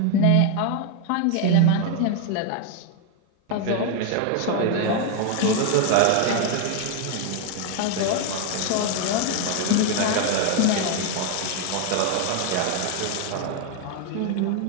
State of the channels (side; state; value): both; different; correlation 0.01